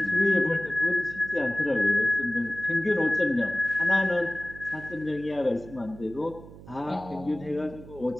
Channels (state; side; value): noise; right; hum, 17 dB below the sound